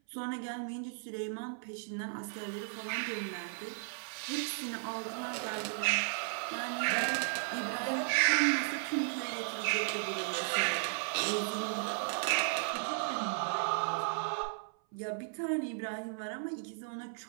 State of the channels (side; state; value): left; silent; 54 dB below the other